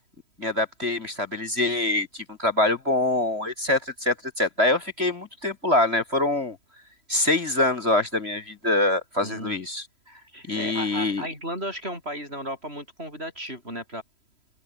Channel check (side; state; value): left; late; 3.1 ms